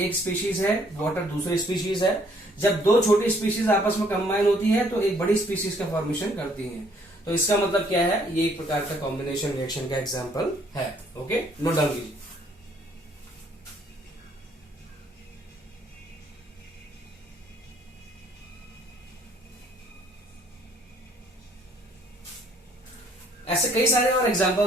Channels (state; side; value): normal; both; correlation 0.64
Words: स्पीशीज है, वाटर दूसरी स्पीशीज है, जब दो छोटी स्पीशीज आपस में कंबाइन होती है तो एक बड़ी स्पीशीज का फॉर्मेशन करती हैं। तो इसका मतलब क्या है, ये एक प्रकार का कॉम्बिनेशन रिएक्शन का एग्जांपल है। ओके, नोट डाउन कीजिए। ऐसे कई सारे और